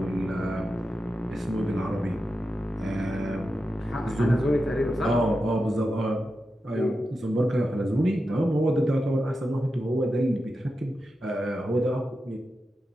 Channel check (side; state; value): both; normal; correlation 0.90